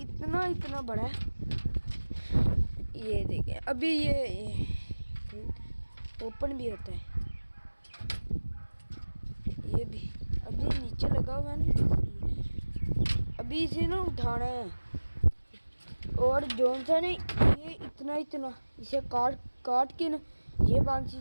इतना बड़ा है। ये देखिए अभी ये ओपन भी होता है। ये भी अभी नीचे लगा हुआ है ना, अभी इसे ना उठाना है। और जौन सा ने ये इतना इसे काट के ना ये बांसी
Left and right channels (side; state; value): both; inverted; correlation -1.00